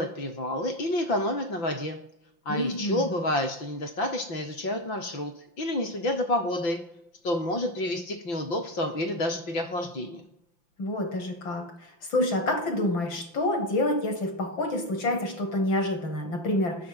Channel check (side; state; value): right; late; 5.8 ms